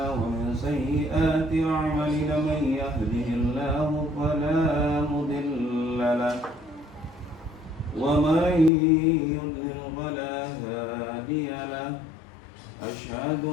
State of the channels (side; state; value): right; drops out; at 8.7 s